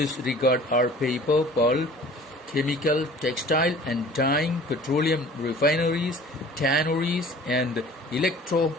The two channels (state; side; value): normal; both; correlation 0.47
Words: regard are paper, pulp, chemical, textile and dyeing, petroleum refineries, tanneries and